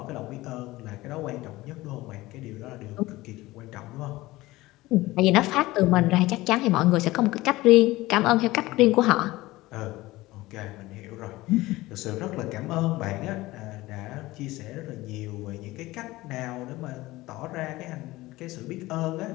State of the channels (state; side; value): quieter; right; 18.7 dB